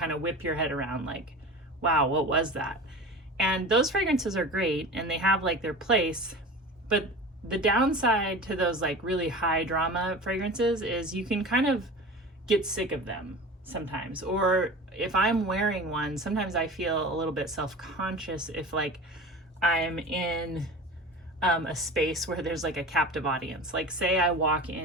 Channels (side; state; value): both; normal; correlation 0.35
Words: of whip your head around like, wow, what was that? And those fragrances are great and they have like their place, but the downside to those like really high drama fragrances is you can kind of get sick of them sometimes. Or if I'm wearing one, sometimes I feel a little bit self-conscious if like I'm in a space where there's like a captive audience. Like say I walk